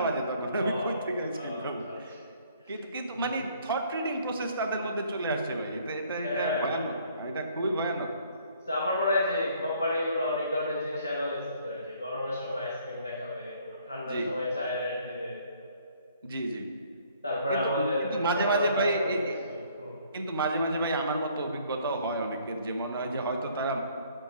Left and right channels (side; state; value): both; inverted; correlation -0.61